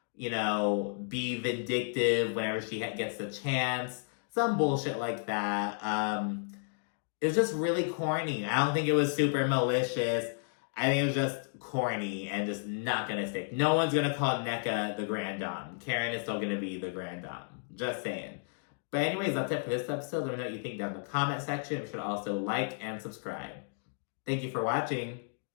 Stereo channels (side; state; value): right; silent; digital silence